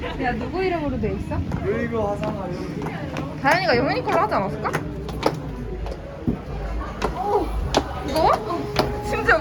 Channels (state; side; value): identical; both; correlation 1.00